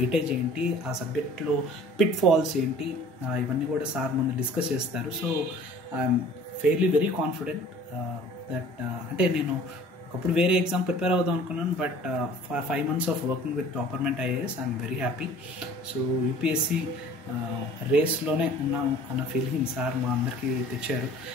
ఏంటి, ఆ సబ్జెక్ట్లో పిట్ ఫాల్స్ ఏంటి, ఇవన్నీ కూడా సార్ ముందు డిస్కస్ చేస్తారు. So I'm fairly very confident that అంటే నేను ఒకప్పుడు వేరే ఎగ్జామ్ ప్రిపేర్ అవుదాం అనుకున్నాను, but 5 months of working with Topperment IAS I'm very happy. So UPSC రేస్లోనే ఉన్నాము అన్న ఫీలింగ్ సార్ మా అందరికీ తెచ్చారు.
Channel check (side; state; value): both; normal; correlation 0.48